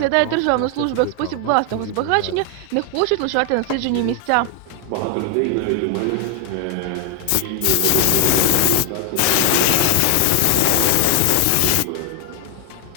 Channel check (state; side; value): different; both; correlation 0.00